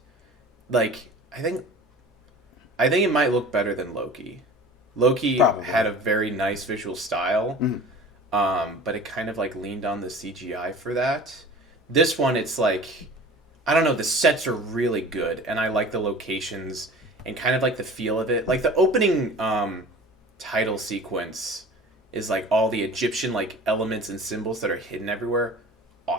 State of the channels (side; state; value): both; normal; correlation 0.41